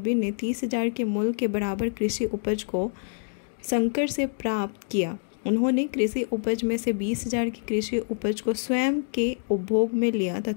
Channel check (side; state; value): right; silent; digital silence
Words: ने 30,000 के मूल्य के बराबर कृषि उपज को शंकर से प्राप्त किया। उन्होंने कृषि उपज में से 20,000 की कृषि उपज को स्वयं के उपभोग में लिया